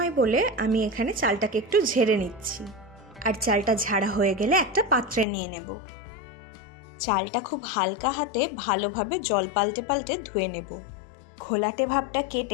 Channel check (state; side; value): drops out; right; at 5.2 s